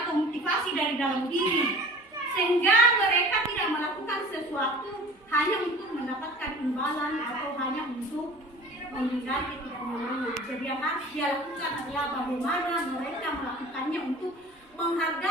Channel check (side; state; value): both; normal; correlation 0.43